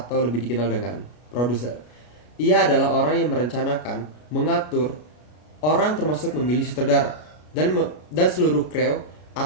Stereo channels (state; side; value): late; right; 33 ms